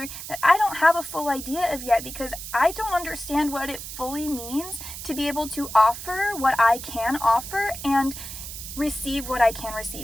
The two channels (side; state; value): right; noise; hiss, 10 dB below the sound